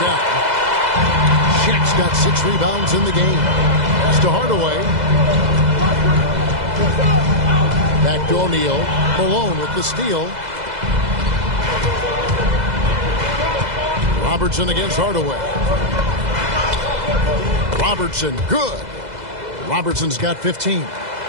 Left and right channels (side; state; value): left; late; 2.0 ms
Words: Shaq's got 6 rebounds in the game. Pass to Hardaway. Back to O'Neal. Malone with the steal. Robertson against Hardaway. Robertson, good. Robertson's got 15.